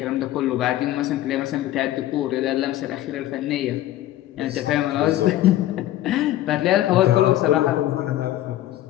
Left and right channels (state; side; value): quieter; right; 13.9 dB